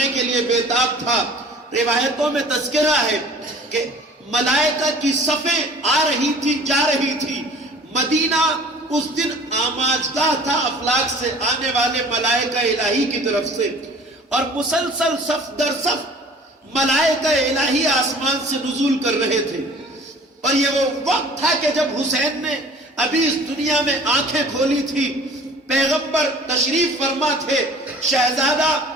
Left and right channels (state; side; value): normal; both; correlation 0.47